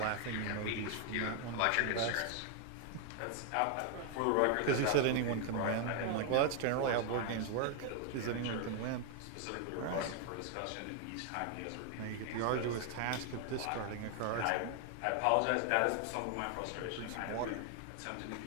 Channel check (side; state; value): both; different; correlation 0.00